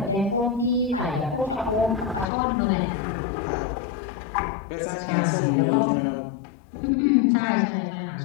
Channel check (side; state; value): right; drops out; at 2.2 s